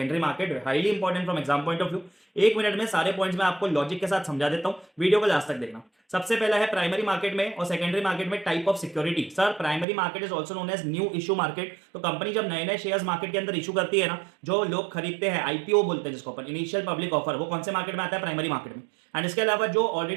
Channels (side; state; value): left; drops out; at 9.9 s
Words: market. Highly important from exam point of view. एक मिनट में सारे पॉइंट्स मैं आपको लॉजिक के साथ समझा देता हूं, वीडियो को लास्ट तक देखना। सबसे पहला है प्राइमरी मार्केट में और सेकेंडरी मार्केट में type of security. Sir, primary market is also known as new issue market. तो कंपनी जब नए नए शेयर्स मार्केट के अंदर इशू करती है ना, जो लोग खरीदते हैं, आईपीओ बोलते हैं जिसको अपन, इनिशियल पब्लिक ऑफर, वो कौन से मार्केट में आता है? प्राइमरी मार्केट में। एंड इसके अलावा जो